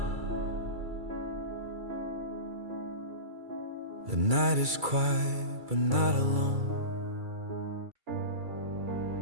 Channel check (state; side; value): late; left; 2.3 ms